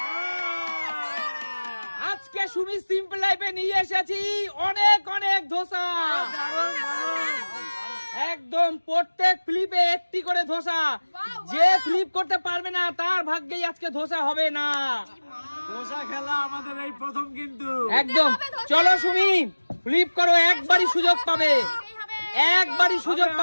আজকে সুমি সিম্পল লাইফে নিয়ে এসেছি অনেক অনেক ধোসা, একদম প্রত্যেক ফ্লিপে একটি করে ধোসা। যে ফ্লিপ করতে পারবে না তার ভাগ্যেই আজকে ধোসা হবে না। ধোসা খেলা আমাদের এই প্রথম কিন্তু। একদম চলো সুমি ফ্লিপ করো, একবারই সুযোগ পাবে, একবারই সুযোগ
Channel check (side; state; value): both; inverted; correlation -1.00